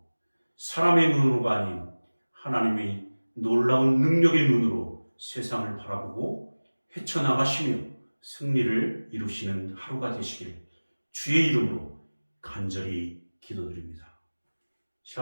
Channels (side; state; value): both; inverted; correlation -1.00